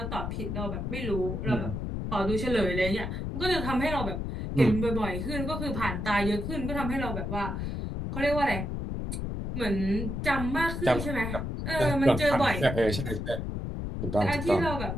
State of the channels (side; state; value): left; noise; rumble, 4 dB below the sound